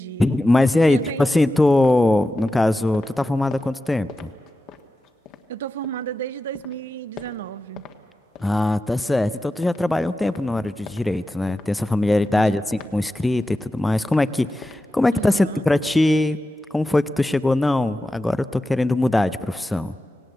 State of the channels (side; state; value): both; normal; correlation 0.92